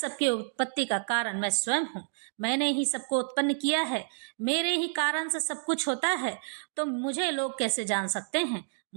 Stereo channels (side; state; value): left; silent; digital silence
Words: उत्पत्ति का कारण मैं स्वयं हूँ। मैंने ही सबको उत्पन्न किया है। मेरे ही कारण से सब कुछ होता है, तो मुझे लोग कैसे जान सकते हैं?